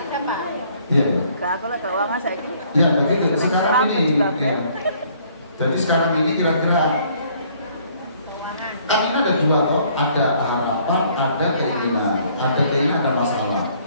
Pak. iya. Gak apa lah keuangan saya ini. Ya, begitu. Sekarang ini ya. Jadi sekarang ini kira-kira kan ini ada dua toh, ada harapan, ada keinginan, ada masalah.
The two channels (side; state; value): both; inverted; correlation -0.62